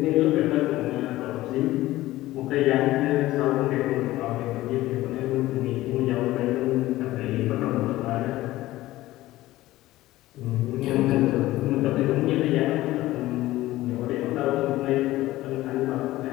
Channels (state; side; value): quieter; right; 16.6 dB